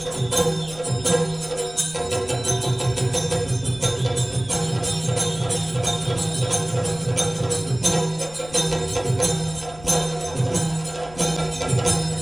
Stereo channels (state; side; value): noise; left; rumble, 19 dB below the sound